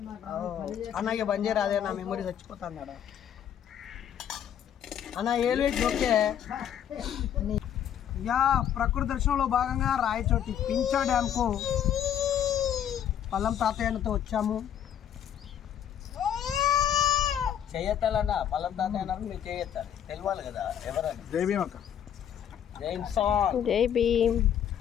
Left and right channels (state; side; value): quieter; right; 9.6 dB